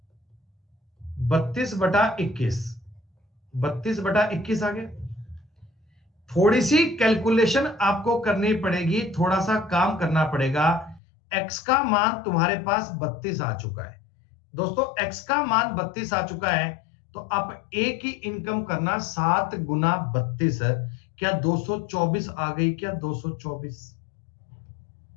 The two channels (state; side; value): drops out; right; at 11.0 s